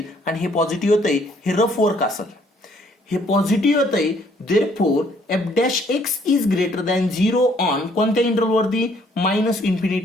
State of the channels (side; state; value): both; normal; correlation 0.64